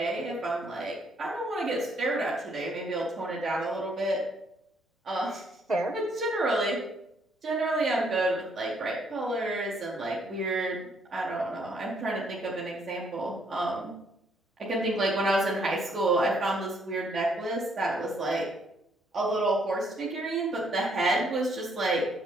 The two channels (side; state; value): both; normal; correlation 0.69